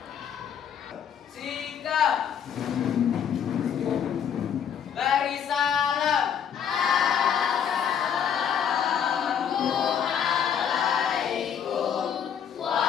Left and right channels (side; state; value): right; quieter; 8.3 dB